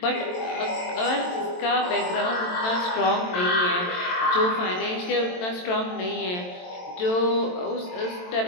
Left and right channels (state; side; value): late; right; 22 ms